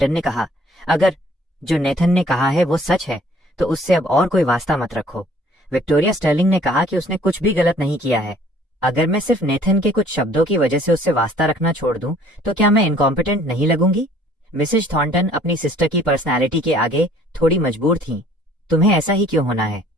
ने कहा, अगर जो नेथन ने कहा है वो सच है तो उससे अब और कोई वास्ता मत रखो। विक्टोरिया स्टर्लिंग ने कहा कि उसने कुछ भी गलत नहीं किया है। अगर मैं सिर्फ नेथन के कुछ शब्दों की वजह से उससे वास्ता रखना छोड़ दूं तो क्या मैं इनकॉम्पिटेंट नहीं लगूंगी? मिसेस थॉर्नटन अपनी सिस्टर की पर्सनैलिटी के आगे थोड़ी मजबूर थीं। तुम्हें ऐसा ही क्यों होना है?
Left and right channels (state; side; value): normal; both; correlation 0.56